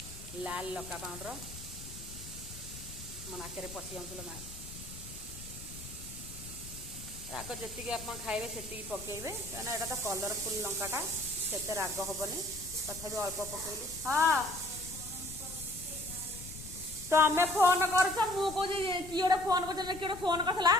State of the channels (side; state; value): left; noise; rumble, 13 dB below the sound